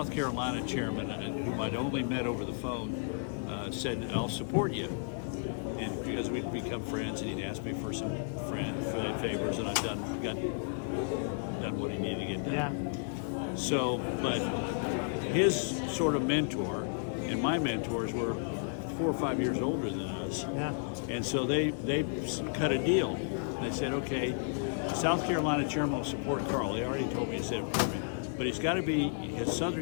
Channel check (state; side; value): silent; right; digital silence